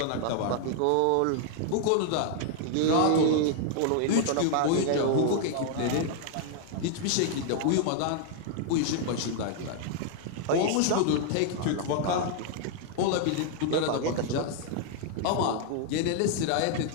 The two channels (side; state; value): both; different; correlation 0.00